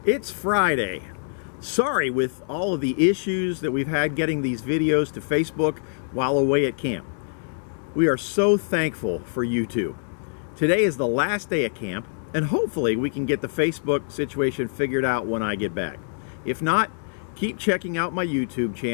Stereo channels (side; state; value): right; silent; 59 dB below the other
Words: It's Friday. Sorry with all of the issues that we've had getting these videos to Facebook while away at camp. We are so thankful for YouTube. Today is the last day of camp, and hopefully we can get the Facebook situation figured out when I get back. If not, keep checking out my YouTube